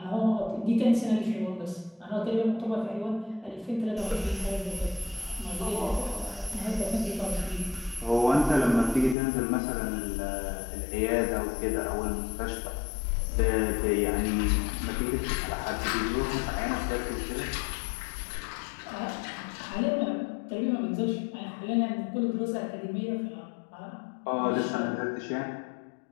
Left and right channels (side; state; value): right; drops out; at 9.2 s